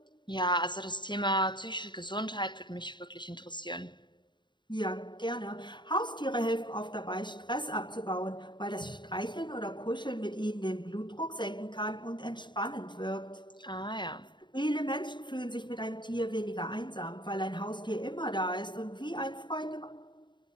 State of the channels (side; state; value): right; late; 0.22 ms